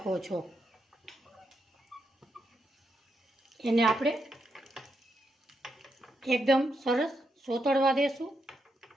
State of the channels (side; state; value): both; normal; correlation 0.82